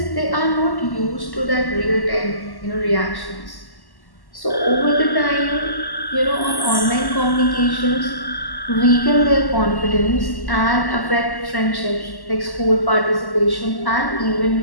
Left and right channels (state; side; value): late; right; 1.1 ms